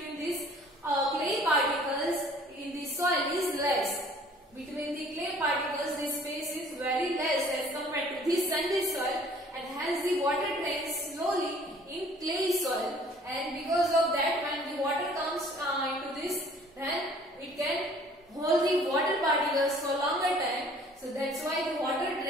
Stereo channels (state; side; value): normal; both; correlation 0.54